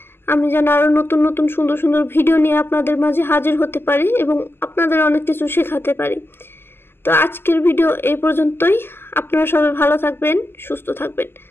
আমি যেন আরও নতুন নতুন সুন্দর সুন্দর ভিডিও নিয়ে আপনাদের মাঝে হাজির হতে পারি এবং আপনাদের অনেক কিছু শেখাতে পারি। তো আজকের ভিডিও এই পর্যন্তই। আপনারা সবাই ভালো থাকবেন, সুস্থ থাকবেন।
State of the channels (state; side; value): late; right; 0.11 ms